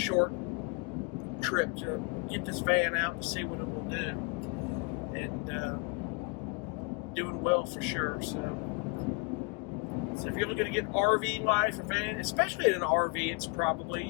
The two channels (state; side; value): quieter; right; 31.0 dB